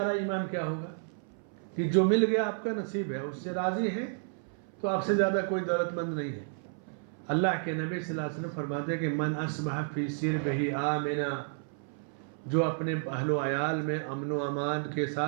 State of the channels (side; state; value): left; silent; 57 dB below the other